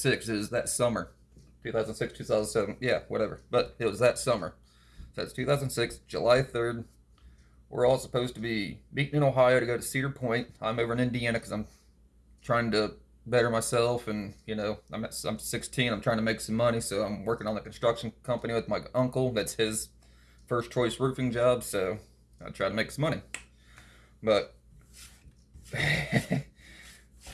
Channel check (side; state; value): both; identical; correlation 1.00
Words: is that summer. 2006, 2007. Yeah, whatever. But it was that summer. So it's 2006, July 3rd. We're all supposed to be meeting in Ohio to go to Cedar Point. I'm over in Indiana because I'm trying to better myself, and I'm 16. I'm trying to make some money, so I'm working on the construction company with my uncle. That's his first choice roofing job, so I try to make some money. But